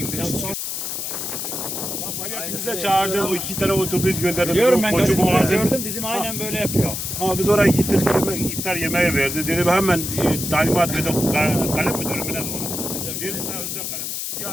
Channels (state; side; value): noise; left; hiss, 4 dB below the sound